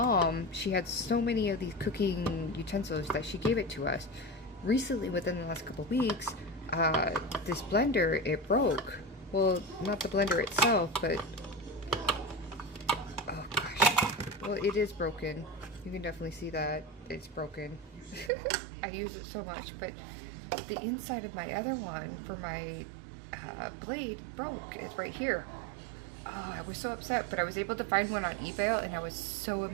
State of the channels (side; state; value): left; drops out; at 18.3 s